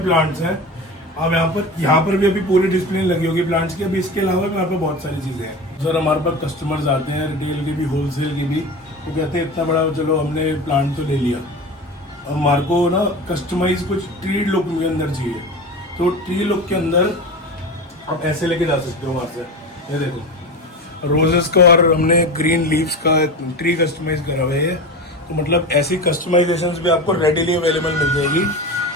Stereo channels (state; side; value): normal; both; correlation 0.27